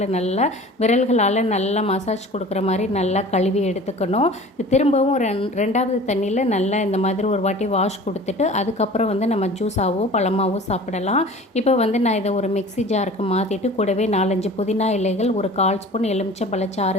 நல்லா விரல்களால் நல்லா மசாஜ் கொடுக்குற மாதிரி நல்லா கழுவி எடுத்துக்கணும். திரும்பவும் ரெண்டாவது தண்ணியில் நல்லா இந்த மாதிரி ஒரு வாட்டி வாஷ் கொடுத்துட்டு அதுக்கப்புறம் நம்ம ஜூஸாவோ பழமாவோ சாப்பிடலாம். இப்போ நான் இதை ஒரு மிக்ஸி ஜாருக்கு மாற்றிட்டு கூடவே 4-5 புதினா இலைகள், ஒரு 1/4 ஸ்பூன்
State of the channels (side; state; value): both; normal; correlation 0.42